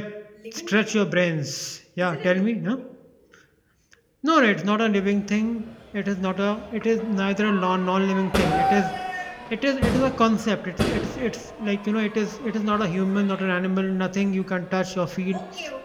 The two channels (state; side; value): identical; both; correlation 1.00